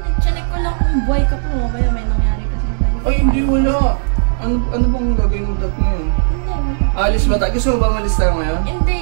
Chinek ko lang kung buhay ka pa. Mamaya may nangyari kasi. Ay, hindi wala. Ano bang gagawin mo dat ngayon? Hindi, wala. Alis ba tayo? Gusto mo ba malis tayo ngayon? Hindi,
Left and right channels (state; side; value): silent; left; 67 dB below the other